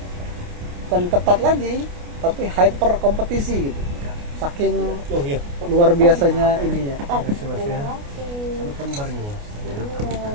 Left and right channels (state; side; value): late; left; 29 ms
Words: ketat lagi, tapi hyper kompetisi gitu. Saking luar biasanya ininya.